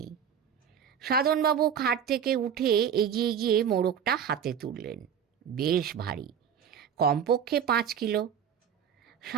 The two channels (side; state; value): left; quieter; 8.2 dB